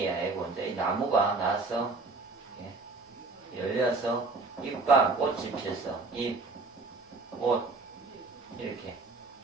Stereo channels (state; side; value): quieter; left; 3.7 dB